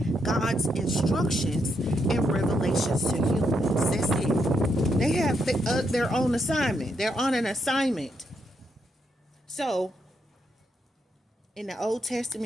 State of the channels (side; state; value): both; normal; correlation 0.79